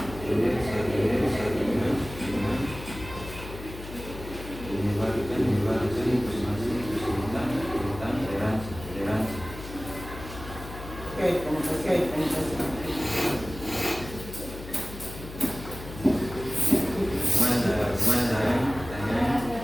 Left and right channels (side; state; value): left; noise; hum, 12 dB below the sound